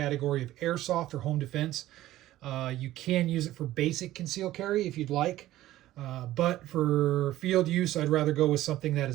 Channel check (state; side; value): quieter; left; 15.0 dB